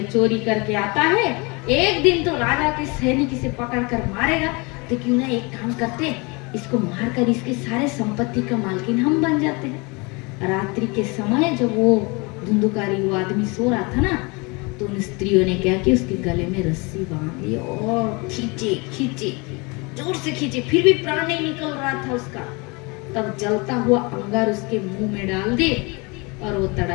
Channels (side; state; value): right; quieter; 28.2 dB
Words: चोरी करके आता है, एक दिन तो राजा के सैनिक इसे पकड़ कर मारेगा, तो क्यों ना एक काम करते, इसको मारकर इसके सारे संपत्ति का मालकिन हम बन जाते हैं। रात्रि के समय जब वो धुंधुकारी वो आदमी सो रहा था ना, तो उन स्त्रियों ने क्या किया, उसके गले में रस्सी बांध ली और खींचे खींचे, जोर से खींचे, फिर भी प्राण नहीं निकल रहा था उसका। तब जलता हुआ अंगार उसके मुंह में डाल दे और वो